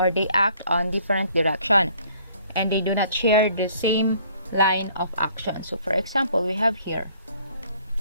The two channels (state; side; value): inverted; both; correlation -0.59